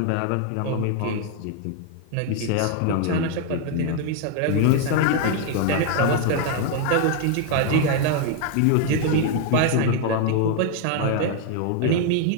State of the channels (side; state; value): both; different; correlation 0.00